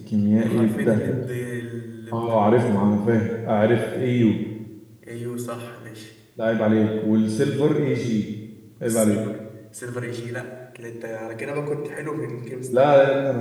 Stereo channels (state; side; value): identical; both; correlation 1.00